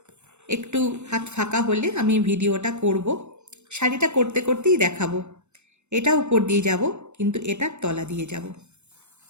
একটু হাত ফাঁকা হলে আমি ভিডিওটা করব। শাড়িটা করতে করতেই দেখাবো। এটা উপর দিয়ে যাব, কিন্তু এটার তলা দিয়ে যাব।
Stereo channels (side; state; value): left; late; 0.82 ms